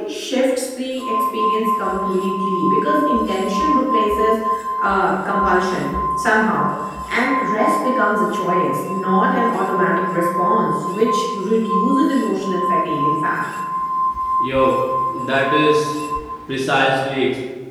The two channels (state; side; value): identical; both; correlation 1.00